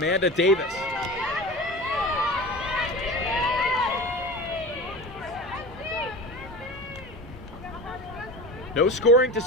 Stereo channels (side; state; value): both; normal; correlation 0.32